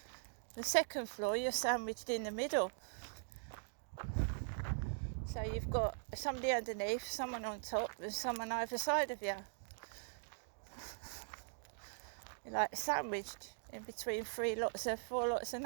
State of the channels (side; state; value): left; silent; digital silence